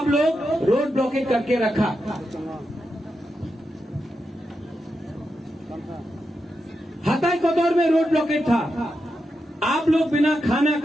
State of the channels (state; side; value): normal; both; correlation 0.87